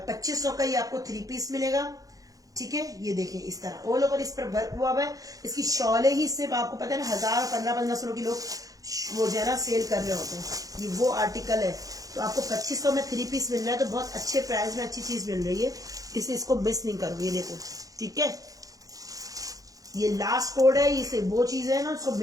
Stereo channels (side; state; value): left; late; 0.17 ms